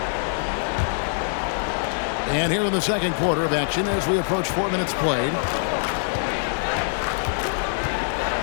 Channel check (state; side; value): silent; right; digital silence